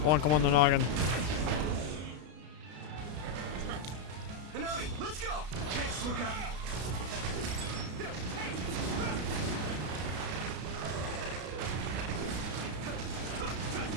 Come on the noggin. Hanabi, let's go! Thanks, Luca.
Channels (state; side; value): late; left; 33 ms